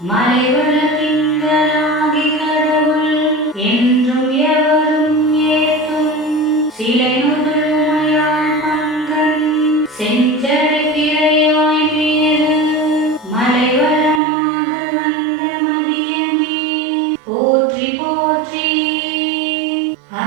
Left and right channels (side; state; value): left; drops out; at 14.2 s